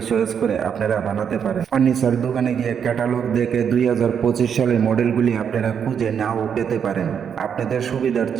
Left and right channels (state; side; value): quieter; left; 7.6 dB